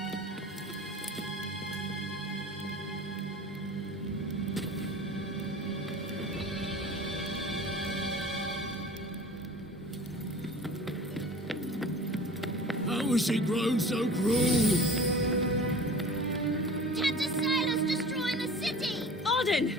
How has she grown so cruel? Tanta Sila's destroying the city! Odin!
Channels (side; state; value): both; normal; correlation 0.41